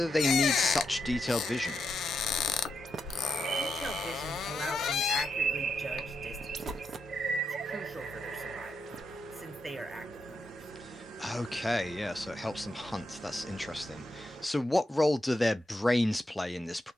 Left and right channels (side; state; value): both; normal; correlation 0.84